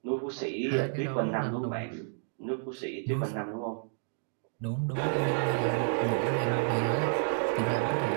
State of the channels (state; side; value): silent; left; digital silence